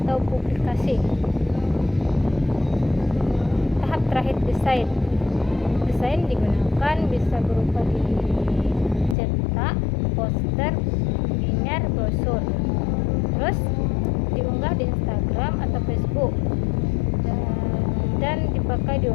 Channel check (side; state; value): right; drops out; at 9.2 s